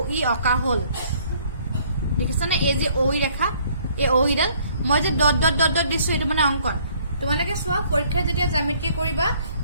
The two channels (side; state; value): both; inverted; correlation -0.61